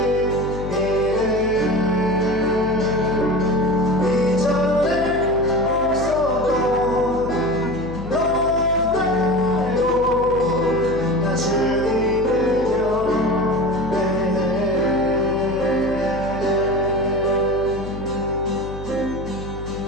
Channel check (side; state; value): left; noise; hum, 11 dB below the sound